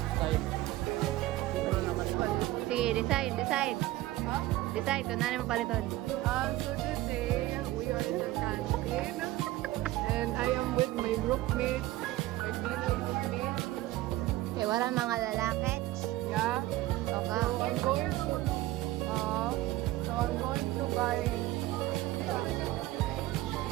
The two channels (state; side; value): quieter; left; 16.8 dB